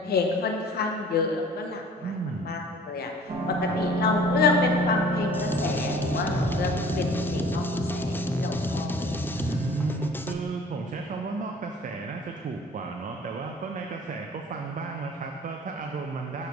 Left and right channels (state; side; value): normal; both; correlation 0.49